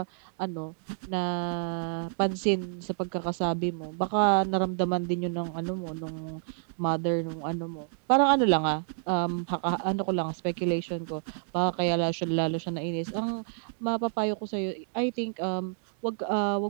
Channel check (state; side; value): silent; left; digital silence